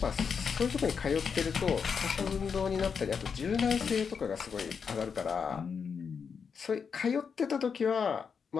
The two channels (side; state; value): right; quieter; 6.2 dB